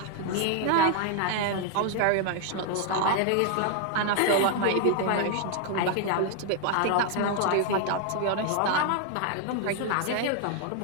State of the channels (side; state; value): both; different; correlation 0.00